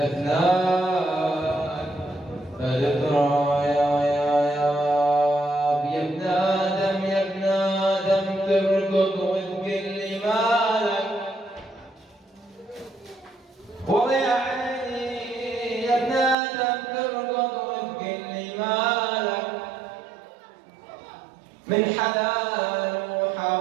بالتراب يا ابن آدم يا ابن آدم تركض وتقول لي مالك والله يا عيني يا ابن آدم تركض وتقول لي مالك من حلال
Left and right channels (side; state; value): left; drops out; at 16.4 s